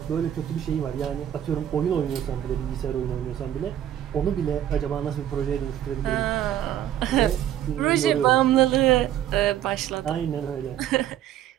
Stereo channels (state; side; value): quieter; left; 11.2 dB